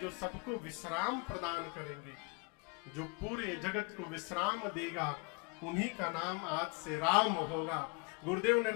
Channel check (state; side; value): quieter; right; 30.7 dB